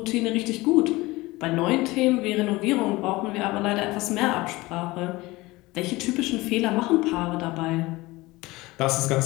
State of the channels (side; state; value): right; quieter; 20.7 dB